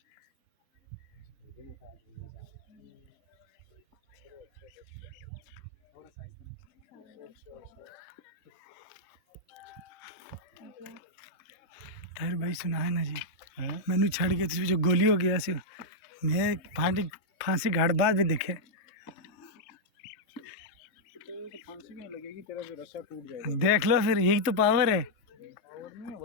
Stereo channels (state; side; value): late; right; 3.2 ms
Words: ताहिर भाई सुना है ना जी, मैनू छड़ के तुझे जो गोली हो गया सी, मैं फांसी घाट बाद भी देखे। देख लो फिर, यही तो पावर है।